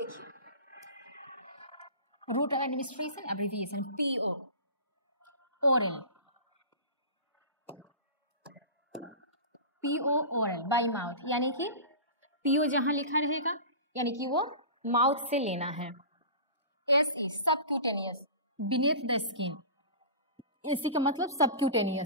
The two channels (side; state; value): both; inverted; correlation -0.33